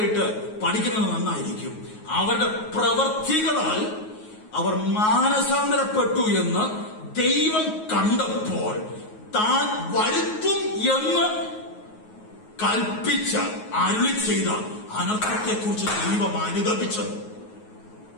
പഠിക്കുന്നത് നന്നായിരിക്കും. അവരുടെ പ്രവർത്തികളാൽ അവർ മാനസാന്തരപ്പെട്ടു എന്ന് ദൈവം കണ്ടപ്പോൾ താൻ വരുത്തും എന്ന് കൽപ്പിച്ച അരുളി ചെയ്ത അനർത്ഥത്തെക്കുറിച്ച് ദൈവം അനുദപിച്ചത്.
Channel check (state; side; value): late; right; 9.4 ms